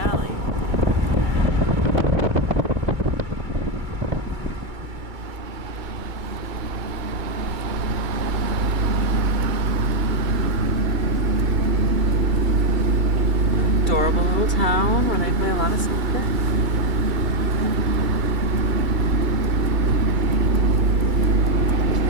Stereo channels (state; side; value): late; left; 2.3 ms